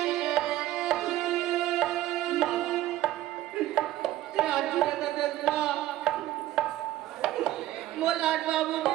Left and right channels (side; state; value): left; quieter; 14.8 dB